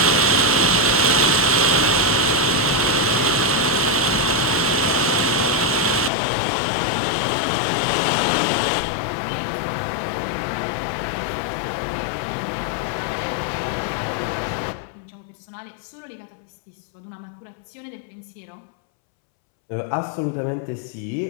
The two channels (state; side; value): drops out; right; at 6.1 s